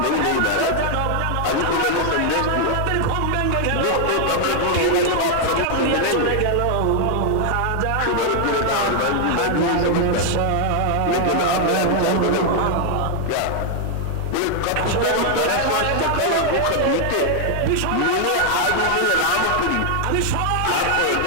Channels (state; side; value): different; both; correlation 0.00